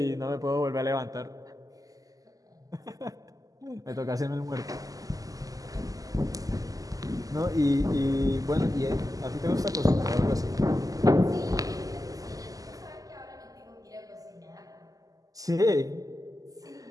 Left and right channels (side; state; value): left; late; 0.17 ms